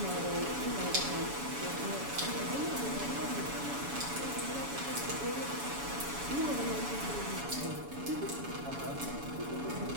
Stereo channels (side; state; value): left; late; 7.1 ms